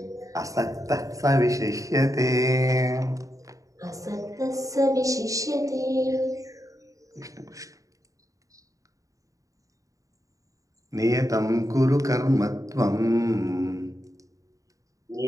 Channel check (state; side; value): late; left; 0.16 ms